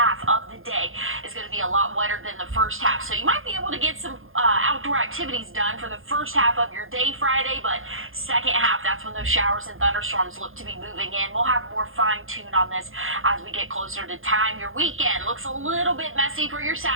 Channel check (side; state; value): left; late; 0.60 ms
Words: of the day is going to be a lot wetter than the first half, so you might be able to get some outdoor activities done for the first half of your day Friday, but second half, that's when those showers and thunderstorms look to be moving in. We'll have more fine-tune on this as we get closer to time. Your weekend looks a little bit messy for your